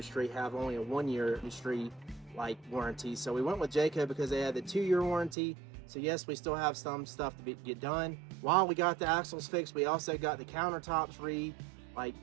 have only a 1-year industry like warranty. So we went with Jayco because they had the 2-year warranty. So yes, we still have some stuff to get done. While we got the axles fixed, we also got the countertops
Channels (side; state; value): left; drops out; at 5.4 s